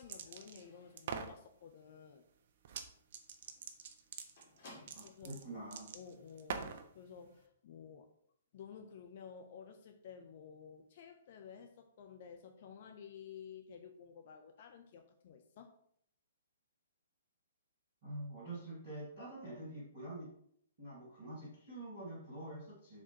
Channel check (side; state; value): both; inverted; correlation -0.53